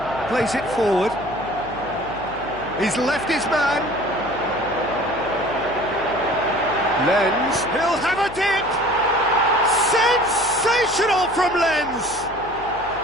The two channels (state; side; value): noise; left; hum, 19 dB below the sound